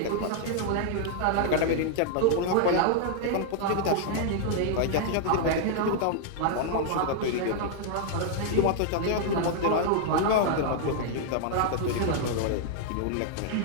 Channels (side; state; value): both; different; correlation -0.01